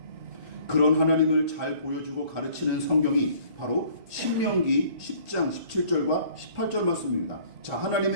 그런 하나님을 잘 보여주고 가르치는 성경이 바로 신명기 10장 17절과 18절 말씀입니다. 자,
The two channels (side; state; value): left; late; 2.0 ms